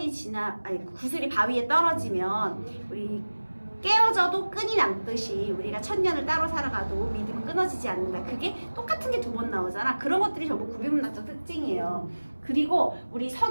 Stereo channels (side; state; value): both; inverted; correlation -1.00